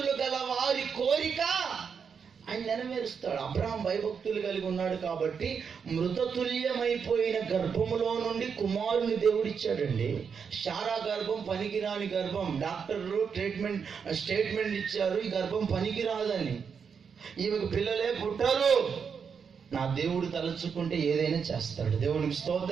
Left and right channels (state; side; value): quieter; left; 6.4 dB